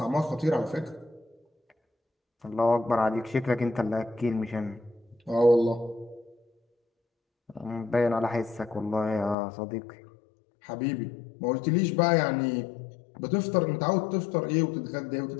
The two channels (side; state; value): right; drops out; at 9.3 s